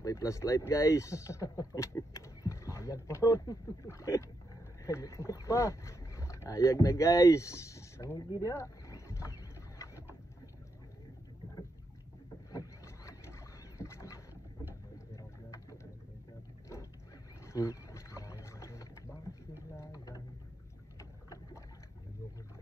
flashlight guys. Ayag pa ron. Pa. Ayag na guys. Tangi dia.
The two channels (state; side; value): normal; both; correlation 0.82